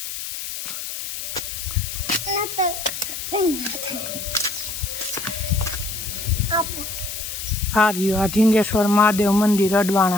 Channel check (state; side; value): noise; left; hiss, 7 dB below the sound